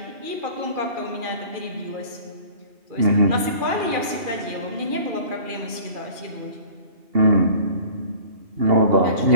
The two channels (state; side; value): late; left; 2.4 ms